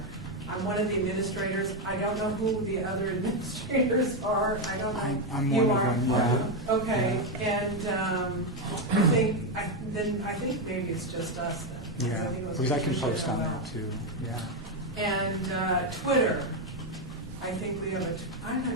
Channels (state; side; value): normal; both; correlation 0.06